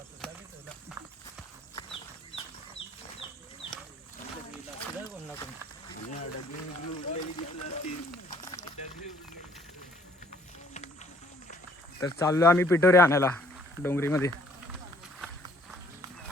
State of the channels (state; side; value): normal; both; correlation 0.61